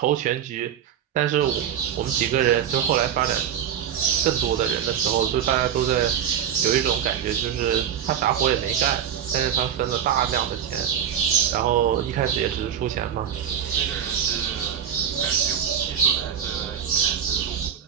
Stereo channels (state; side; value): quieter; left; 9.0 dB